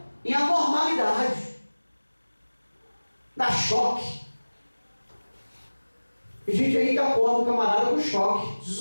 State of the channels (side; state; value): both; inverted; correlation -1.00